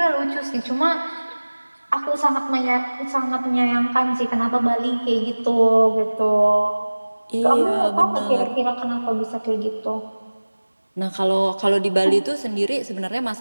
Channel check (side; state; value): both; inverted; correlation -1.00